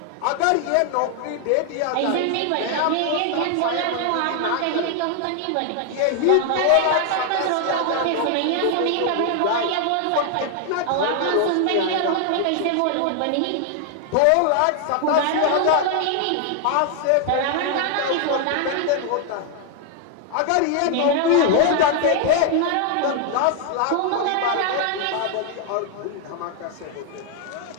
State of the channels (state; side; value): different; both; correlation 0.00